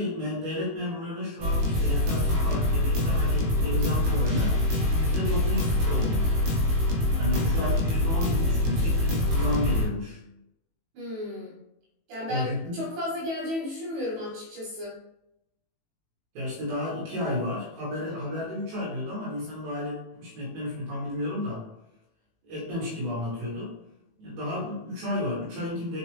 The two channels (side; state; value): left; late; 18 ms